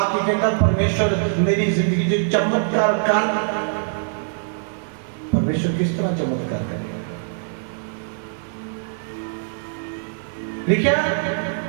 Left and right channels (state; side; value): silent; left; digital silence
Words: कहता परमेश्वर मेरी जिंदगी में चमत्कार कर। परमेश्वर किस तरह चमत्कार करेगा? लिखा